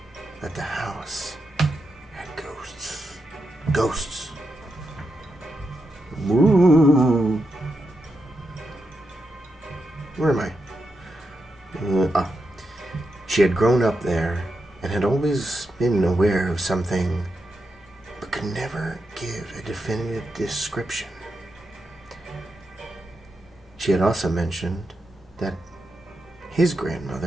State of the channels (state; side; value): normal; both; correlation 0.86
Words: that the house had ghosts. Ghosts. Woo. Where am I? She had grown up there and had always been aware of something, but could never give a definitive description. She had also mentioned that his